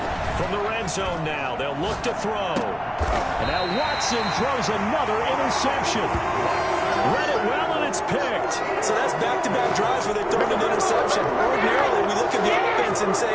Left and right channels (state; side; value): identical; both; correlation 1.00